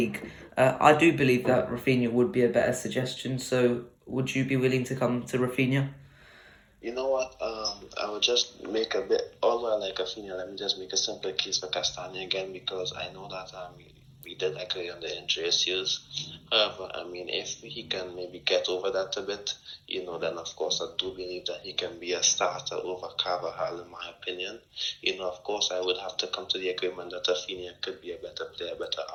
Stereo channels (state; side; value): identical; both; correlation 1.00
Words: I do believe that Rafinha would be a better suggestion. So would you be willing to come to Rafinha? You know what? I would just make a bit, although I like Rafinha, let me just make a simple case for Castagna again, because I know that we did agree on the injury issues. However, I mean, if he can maybe get over that a bit, then of course I do believe that he can be a starter over Carvajal, in my opinion. Of course I would have to come to the agreement that Rafinha could be a better player, better